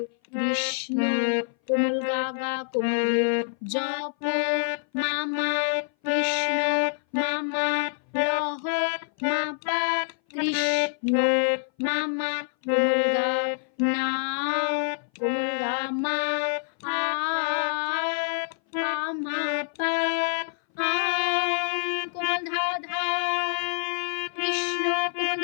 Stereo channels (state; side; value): silent; right; 58 dB below the other